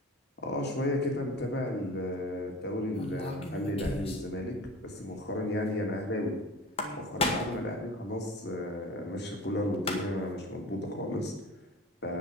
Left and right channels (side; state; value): both; normal; correlation 0.38